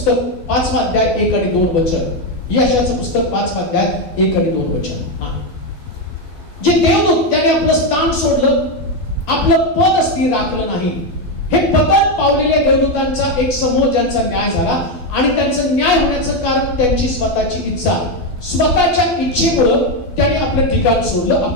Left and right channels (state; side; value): late; right; 12 ms